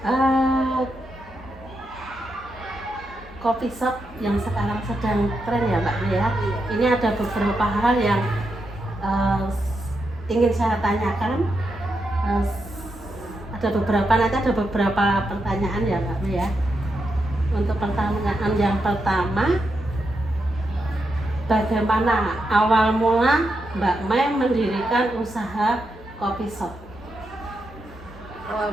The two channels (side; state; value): both; normal; correlation 0.85